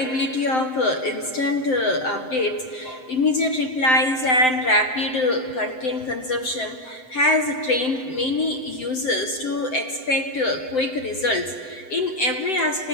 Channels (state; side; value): late; right; 7.8 ms